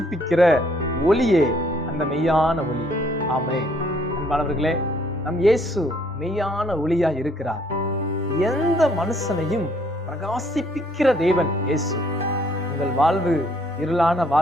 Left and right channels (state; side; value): normal; both; correlation 0.65